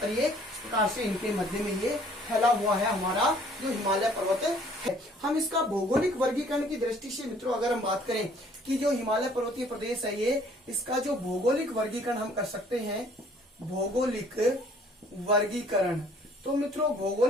ये इस प्रकार से इनके मध्य में ये फैला हुआ है हमारा जो हिमालय पर्वत है। हम इसका भौगोलिक वर्गीकरण की दृष्टि से मित्रों अगर हम बात करें कि जो हिमालय पर्वतीय प्रदेश है, ये इसका जो भौगोलिक वर्गीकरण हम कर सकते हैं, भौगोलिक वर्गीकरण। तो मित्रों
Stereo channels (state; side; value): normal; both; correlation 0.58